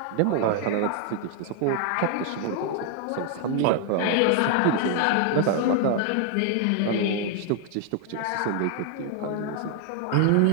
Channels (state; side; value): different; both; correlation 0.00